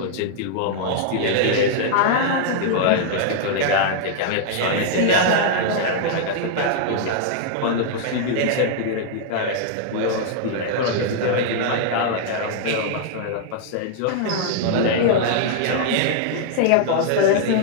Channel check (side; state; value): both; different; correlation -0.01